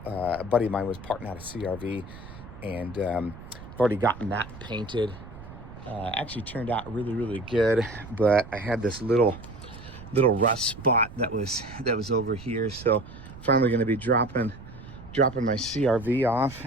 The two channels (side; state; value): right; noise; rumble, 15 dB below the sound